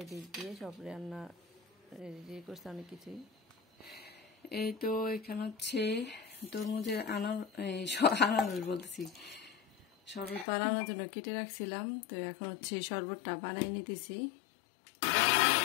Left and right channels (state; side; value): drops out; right; at 10.5 s